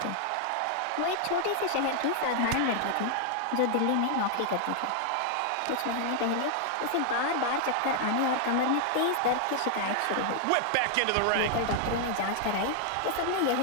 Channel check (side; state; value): both; different; correlation 0.00